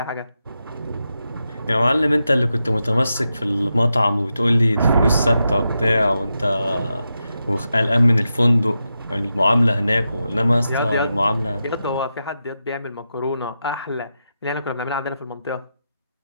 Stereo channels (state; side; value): inverted; both; correlation -0.88